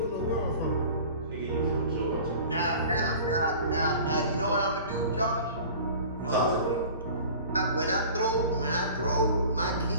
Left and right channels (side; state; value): both; inverted; correlation -0.42